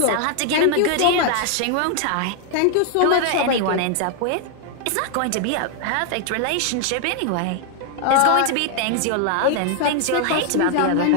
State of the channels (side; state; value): both; different; correlation 0.00